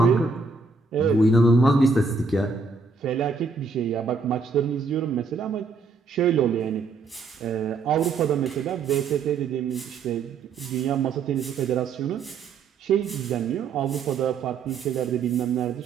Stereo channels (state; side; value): quieter; left; 4.5 dB